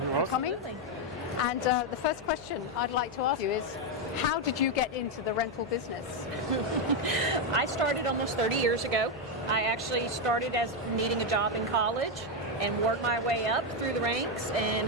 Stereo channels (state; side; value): noise; left; hum, 21 dB below the sound